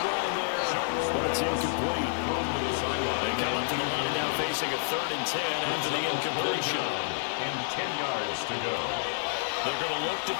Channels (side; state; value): right; silent; 59 dB below the other